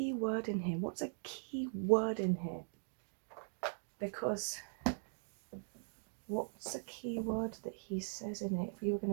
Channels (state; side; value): silent; left; digital silence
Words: word in here? What's a key word in here? Because what's a key word that he says in it? If we were